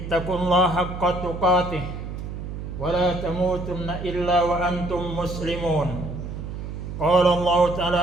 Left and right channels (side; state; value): right; noise; hum, 7 dB below the sound